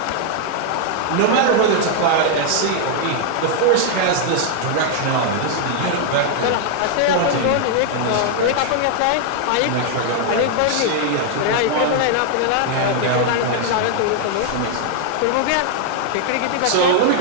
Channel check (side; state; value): both; different; correlation 0.00